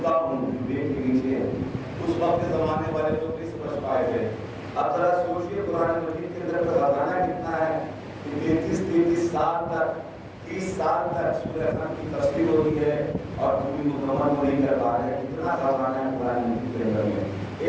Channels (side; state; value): both; identical; correlation 1.00